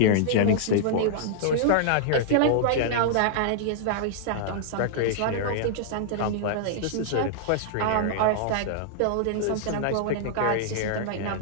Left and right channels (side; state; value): both; different; correlation -0.01